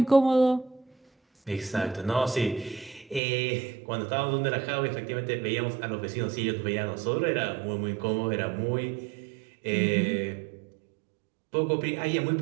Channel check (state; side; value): drops out; left; at 3.2 s